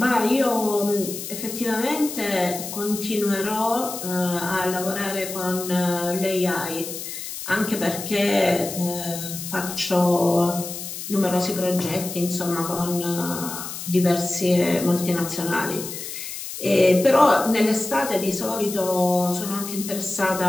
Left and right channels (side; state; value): left; noise; hiss, 8 dB below the sound